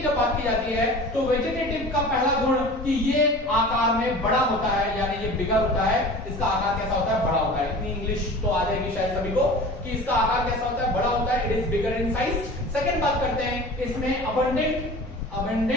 जब बात की जाती है तो वेजिटेटिव का पहला गुण कि ये आकार में बड़ा होता है, यानी ये बिगर होता है। इसका आकार कैसा होता है? बड़ा होता है। इतनी इंग्लिश तो आ जाएगी शायद सभी को कि इसका आकार कैसा होता है? बड़ा होता है। It is bigger in size. Second बात करते हैं, इसमें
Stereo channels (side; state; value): both; normal; correlation 0.39